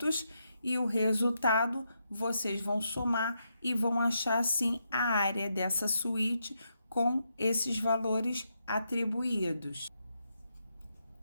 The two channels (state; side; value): inverted; both; correlation -0.82